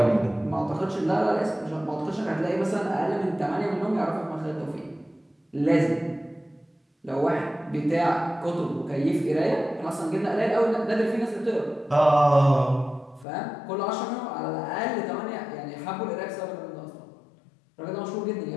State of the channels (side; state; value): right; drops out; at 13.2 s